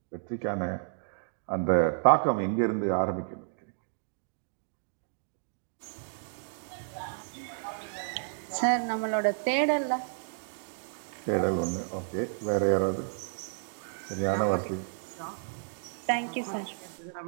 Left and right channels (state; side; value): silent; left; digital silence